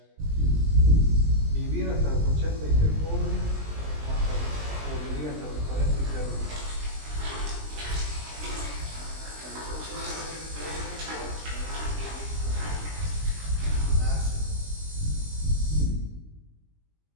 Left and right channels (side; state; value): left; late; 20 ms